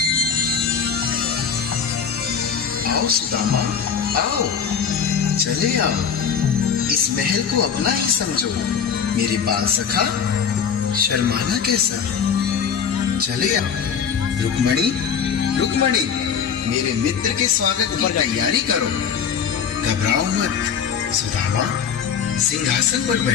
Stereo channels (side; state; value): right; quieter; 7.2 dB